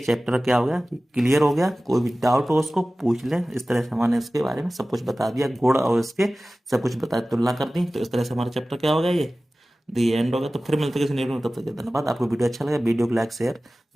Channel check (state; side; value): normal; both; correlation 0.97